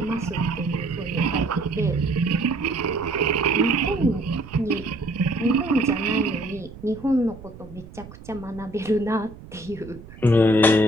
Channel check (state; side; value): noise; right; rumble, 17 dB below the sound